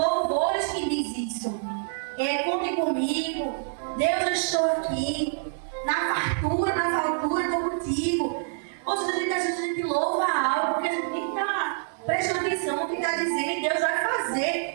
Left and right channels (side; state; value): left; silent; digital silence